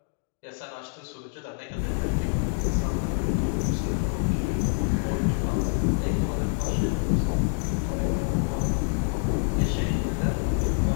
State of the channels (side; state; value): right; silent; 61 dB below the other